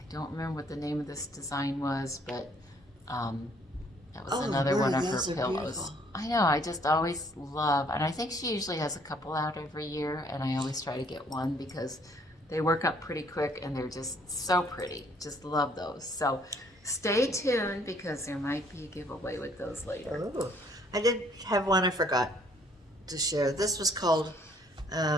don't remember what the name of this design was, but that was Oh, another one of her those are pillows. beautiful. I know, I just always love, and I think she usually has a couple out every year, and I always try to get one because they work up pretty quick and they're just so pretty. Just love those. So stay tuned because there might be a giveaway with those later. Oh, I did have one I forgot to share. This was called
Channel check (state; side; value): normal; both; correlation 0.63